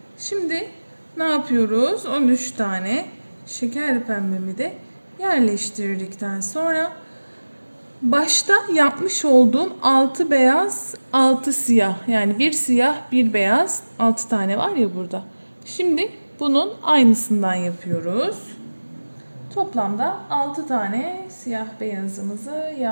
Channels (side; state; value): both; inverted; correlation -1.00